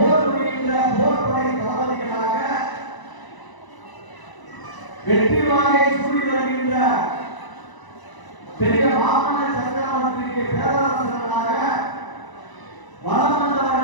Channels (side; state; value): right; late; 1.0 ms